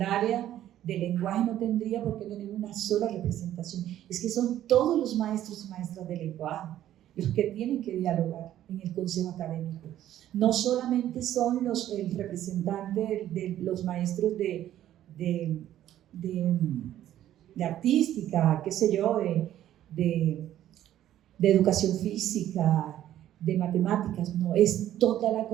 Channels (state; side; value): quieter; left; 12.3 dB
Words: área de lenguaje no tendría por qué tener una sola representación, es que son todos los maestros y maestras de lenguaje los que tienen que dialogar en el consejo académico. No solamente son el representante de los maestros de artística, qué sé yo, de educación física, de matemáticas, no, es toda la